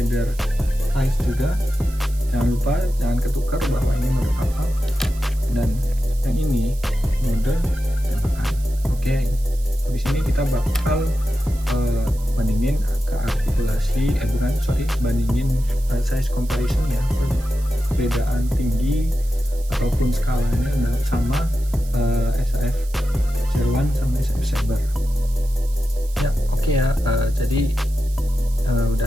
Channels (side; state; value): right; noise; hiss, 20 dB below the sound